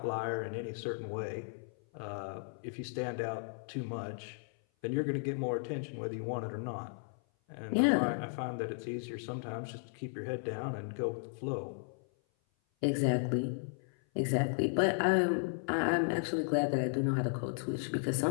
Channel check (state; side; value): silent; right; 54 dB below the other